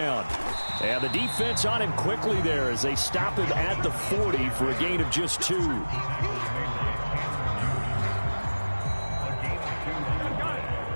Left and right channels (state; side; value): inverted; both; correlation -1.00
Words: And the defense on him quickly there as they stop him at the 40 for a gain of just 2.